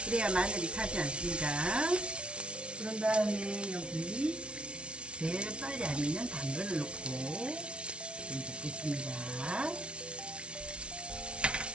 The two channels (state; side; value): late; left; 0.058 ms